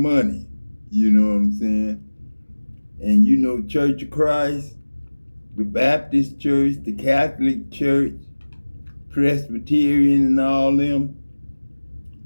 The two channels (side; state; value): both; inverted; correlation -1.00